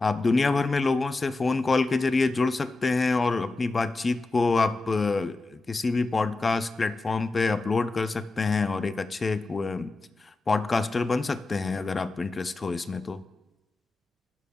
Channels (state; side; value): quieter; right; 3.4 dB